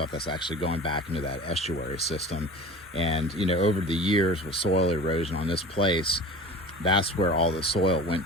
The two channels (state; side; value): normal; both; correlation 0.38